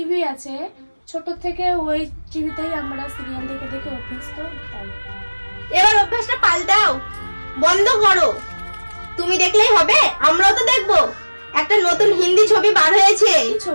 আছে, ছোট থেকে ওই টিভিতেই আমরা সিরিয়াল দেখে দেখে অভ্যস্ত। তাই এবার অভ্যাসটা পাল্টাও, বন্ধ করো। তুমি দেখলেই হবে, আমরাও তো দেখবো। একটা নতুন হিন্দি ছবি বার হয়েছে, কি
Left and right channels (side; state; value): both; inverted; correlation -1.00